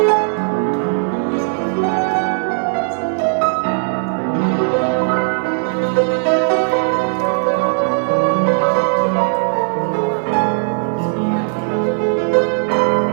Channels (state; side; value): silent; left; 68 dB below the other